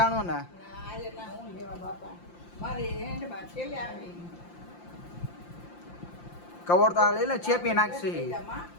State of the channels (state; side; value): late; right; 5.8 ms